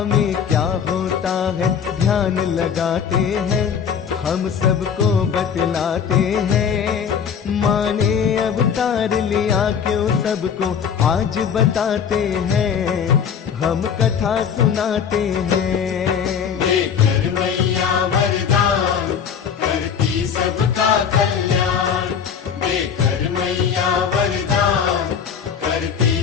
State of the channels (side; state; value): right; quieter; 7.4 dB